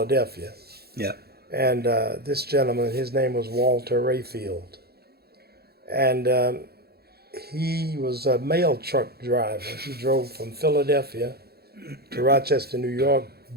Yeah. And this gentleman, his name was Walter Rayfield. And he was a mail truck driver. He drove from Philadelphia to Rochester, New York,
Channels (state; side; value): late; left; 0.46 ms